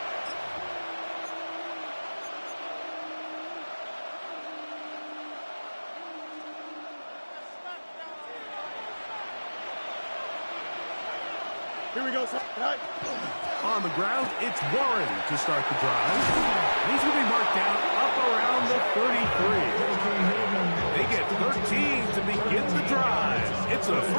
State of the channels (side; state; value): both; inverted; correlation -1.00